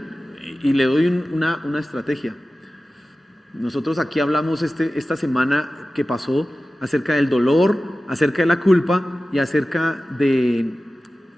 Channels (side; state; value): both; normal; correlation 0.95